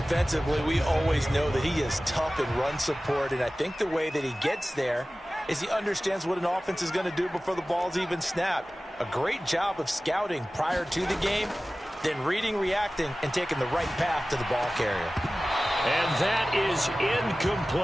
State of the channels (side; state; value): both; normal; correlation 0.97